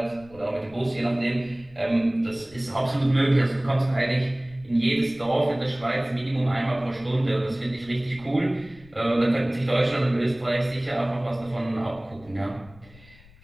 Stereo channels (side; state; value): left; noise; rumble, 24 dB below the sound